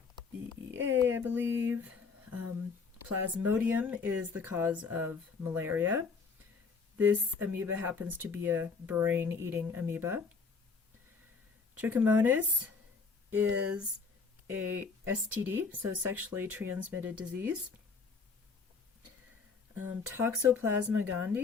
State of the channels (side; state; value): right; quieter; 4.9 dB